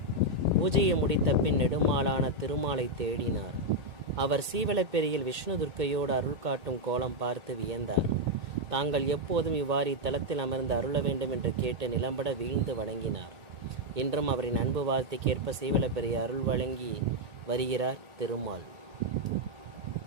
பூஜையை முடித்த பின் நெடுமாலான திருமாலை தேடினார். அவர் சீவலப்பேரியில் விஷ்ணு துர்க்கையோடு அருள் காட்டும் கோலம் பார்த்து வியந்தார். தாங்கள் எப்போதும் இவ்வாறு இத்தலத்தில் அமர்ந்து அருள வேண்டும் என்று கேட்டு நிலம்பட வீழ்ந்து வணங்கினார். இன்றும் அவரின் அன்பு வார்த்தைக்கேற்ப சீவலப்பேரி அருள் வழங்கி வருகிறார் திருமால்.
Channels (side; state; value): left; late; 1.8 ms